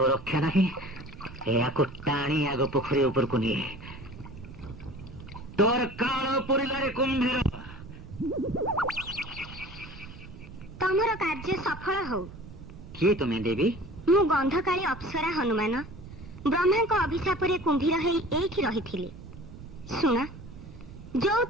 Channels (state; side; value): noise; right; rumble, 15 dB below the sound